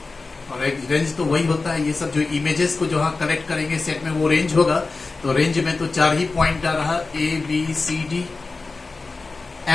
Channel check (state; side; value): quieter; right; 3.8 dB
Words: और एक रेंज तो वही होता है, ये सब जो इमेजेस को जो हाँ कलेक्ट करेंगे सेट में वो रेंज होगा. तो रेंज में तो 4 ही पॉइंट आ रहा, A B C D.